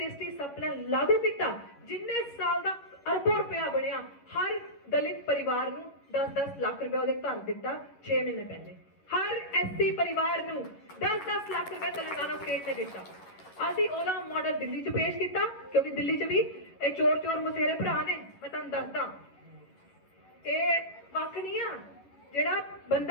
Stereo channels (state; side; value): late; right; 11 ms